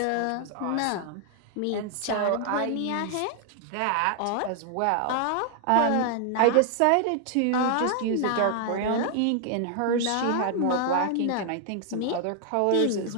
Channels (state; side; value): different; both; correlation 0.00